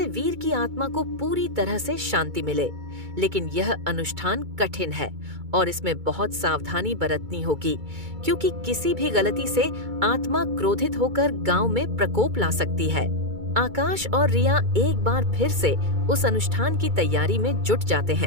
वीर की आत्मा को पूरी तरह से शांति मिले। लेकिन यह अनुष्ठान कठिन है और इसमें बहुत सावधानी बरतनी होगी, क्योंकि किसी भी गलती से आत्मा क्रोधित होकर गांव में प्रकोप ला सकती है। आकाश और रिया एक बार फिर से उस अनुष्ठान की तैयारी में जुट जाते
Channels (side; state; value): left; late; 2.3 ms